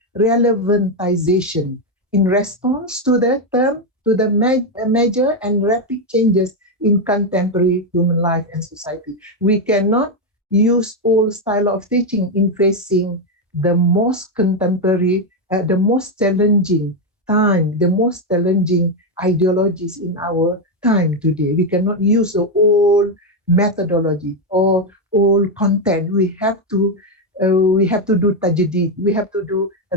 relevantization in response to the term, to the major and rapid changes in contemporary human life and society. We cannot use old style of teaching in facing the most contemporary, the most challenging time, the most challenging ideologies in our time today. We cannot use the old methodology or old content. We have to do tajdid, we have to do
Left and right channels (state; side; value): normal; both; correlation 0.05